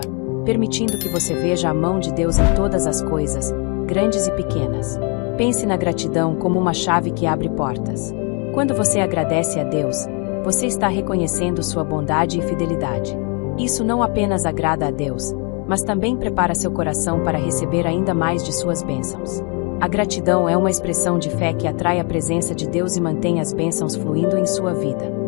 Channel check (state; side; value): quieter; right; 34.8 dB